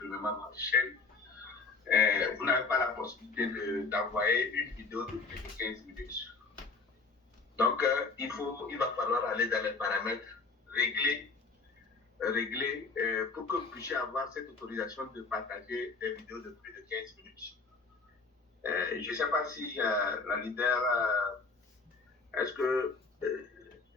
votre chaîne, vous n'avez pas la possibilité d'envoyer une vidéo de plus de 15 minutes. Donc, il va falloir aller dans les paramètres, régler pour que vous puissiez avoir cette autorisation de partager des vidéos de plus de 15 minutes. Je ne sais pas si la leader, est-ce que,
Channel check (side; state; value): right; quieter; 4.2 dB